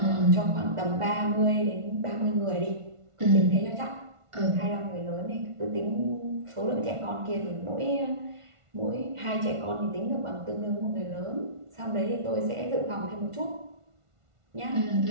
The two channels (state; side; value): late; left; 1.5 ms